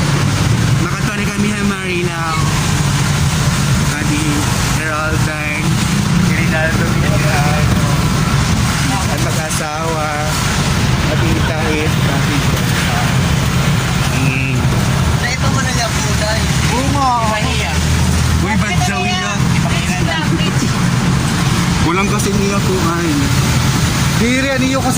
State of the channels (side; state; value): both; identical; correlation 1.00